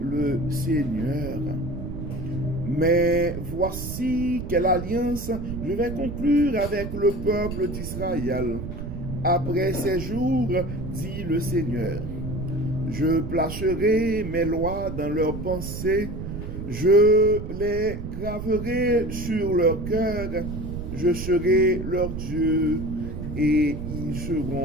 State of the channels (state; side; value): noise; right; rumble, 7 dB below the sound